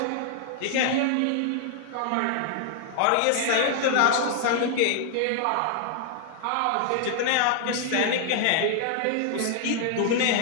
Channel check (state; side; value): different; both; correlation -0.01